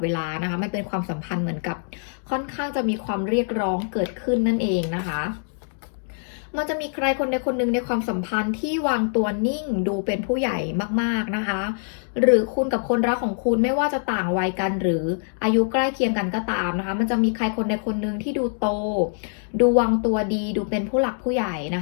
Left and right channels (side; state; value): right; silent; digital silence